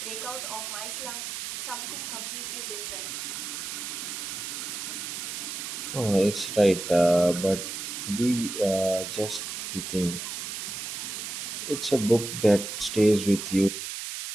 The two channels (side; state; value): right; noise; hiss, 6 dB below the sound